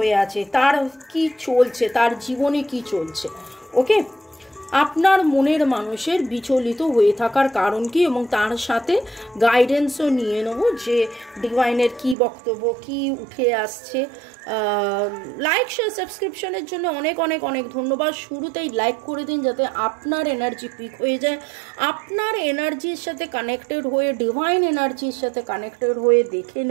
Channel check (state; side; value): drops out; left; at 12.2 s